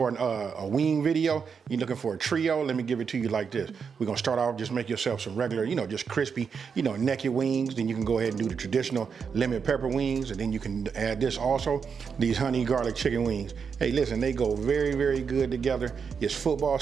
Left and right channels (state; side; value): quieter; left; 6.2 dB